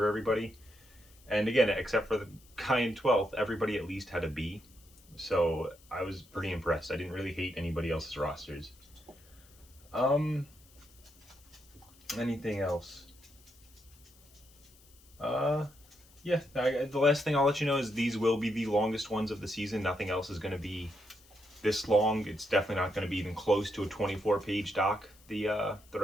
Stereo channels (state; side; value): noise; left; hiss, 27 dB below the sound